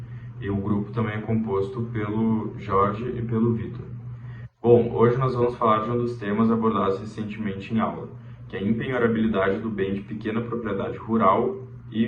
e o grupo também é composto pelo Jorge e pelo Vitor. Bom, hoje nós vamos falar de um dos temas abordados recentemente em aula, que é a empenhorabilidade do bem de pequena propriedade rural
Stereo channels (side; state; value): both; identical; correlation 1.00